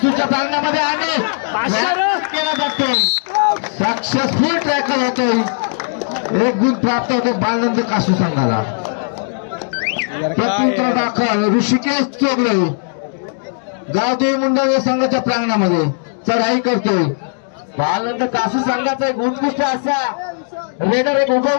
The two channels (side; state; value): right; silent; 68 dB below the other